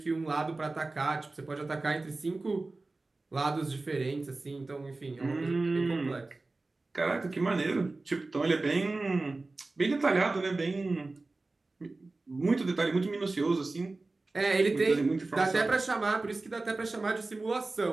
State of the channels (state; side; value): quieter; left; 3.3 dB